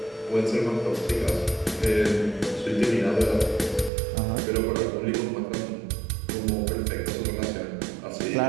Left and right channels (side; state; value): left; drops out; at 3.9 s